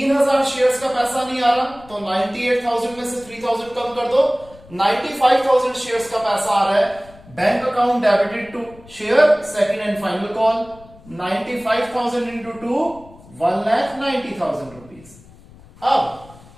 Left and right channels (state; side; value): noise; left; rumble, 23 dB below the sound